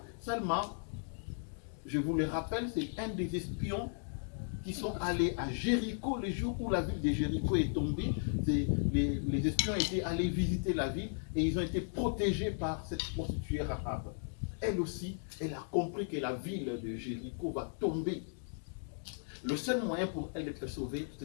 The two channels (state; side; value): silent; right; digital silence